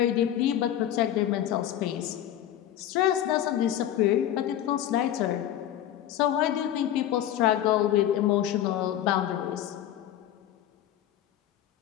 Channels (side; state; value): right; quieter; 11.6 dB